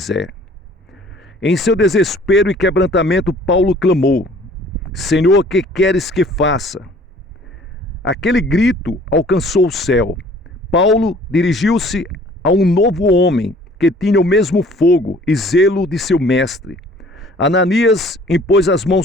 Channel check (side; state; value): both; normal; correlation 0.53